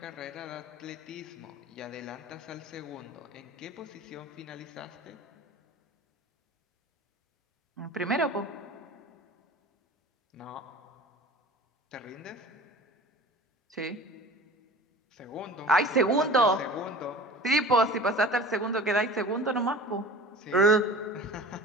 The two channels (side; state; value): both; normal; correlation 0.40